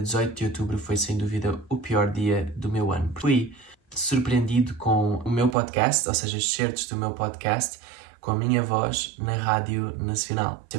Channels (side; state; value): left; drops out; at 5.6 s